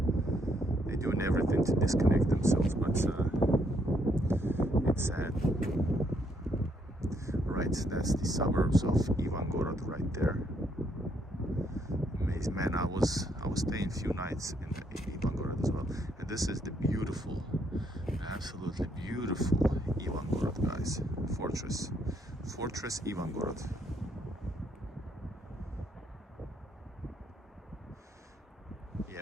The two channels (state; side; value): normal; both; correlation 0.72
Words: They're doing everything to disconnect themselves, but it's sad. Right, that's the suburbs of Ivangorod right there. Amazing, man. I was staying a few nights in Ivangorod as well, and this is the beautiful, absolutely beautiful Ivangorod, guys. Fortress Ivangorod.